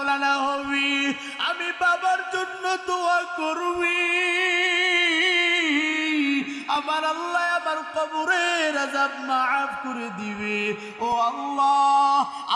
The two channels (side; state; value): both; identical; correlation 1.00